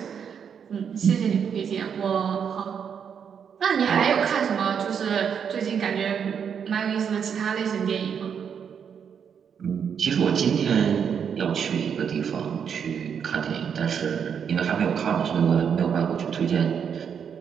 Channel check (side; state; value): left; quieter; 7.4 dB